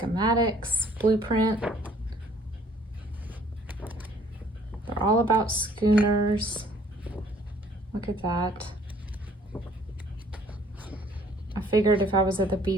blueprint. They're all about schooners. Look at that. I figured if I was at the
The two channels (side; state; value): both; normal; correlation 0.59